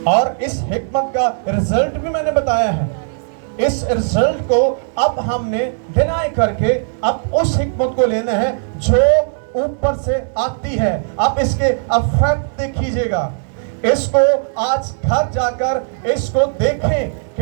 اور اس حکمت کا رزلٹ بھی میں نے بتایا ہے. اس رزلٹ کو اب ہم نے ڈینائی کر کے اب اس حکمت کو لینا ہے جو اوپر سے آتی ہے. اب اس کے افیکٹ دیکھیجئے گا. اس کو آج گھر جا کر اس کو دیکھیں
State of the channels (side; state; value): left; silent; 68 dB below the other